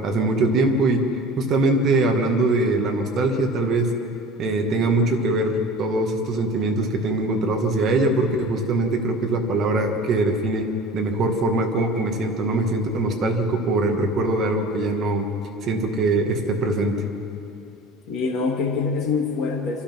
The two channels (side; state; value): both; normal; correlation 0.40